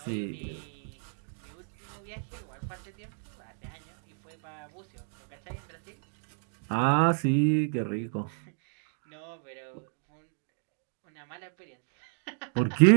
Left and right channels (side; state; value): left; silent; 57 dB below the other